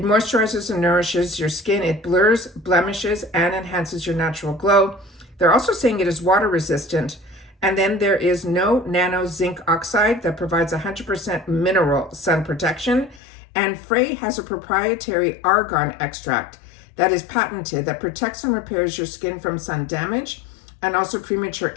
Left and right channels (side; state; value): right; drops out; at 13.2 s